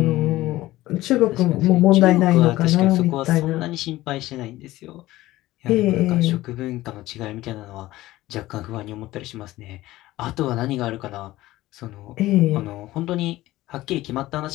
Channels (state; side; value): quieter; right; 16.9 dB